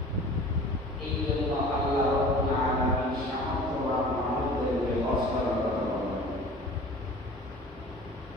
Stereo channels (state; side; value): normal; both; correlation 0.43